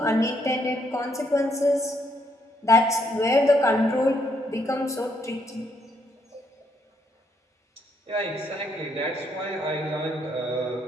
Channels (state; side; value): normal; both; correlation 0.73